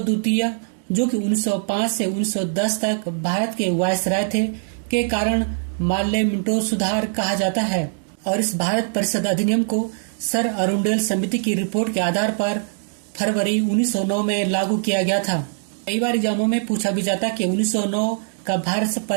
जो कि 1905 से 1910 तक भारत के वायसराय थे, के कारण मार्ले मिंटो सुधार कहा जाता है। और इस भारत परिषद अधिनियम को सर अरुंडेल समिति की रिपोर्ट के आधार पर फरवरी 1909 में लागू किया गया था। कई बार एग्जामों में पूछा भी जाता कि 1909 का भारत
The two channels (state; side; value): silent; left; digital silence